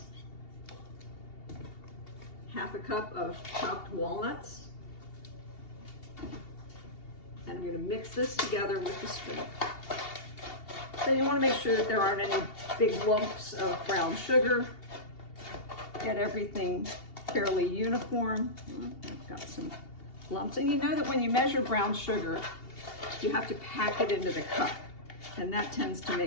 1/2 cup of chopped walnuts, and I'm going to mix this together with the spoon. So you want to make sure that there aren't any big lumps of brown sugar. Get everything fairly uniform. I've got some lumps, and you know that when you measure brown sugar, you have to pack it into the cup, and that tends to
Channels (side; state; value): right; late; 2.8 ms